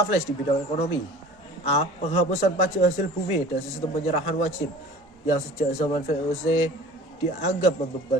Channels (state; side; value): normal; both; correlation 0.43